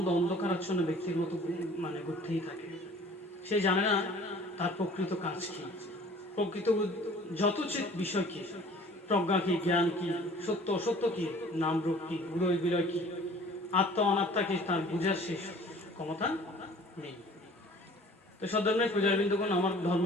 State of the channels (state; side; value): normal; both; correlation 0.49